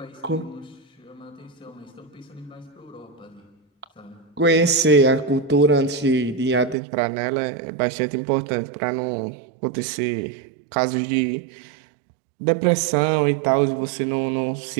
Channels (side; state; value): left; drops out; at 6.8 s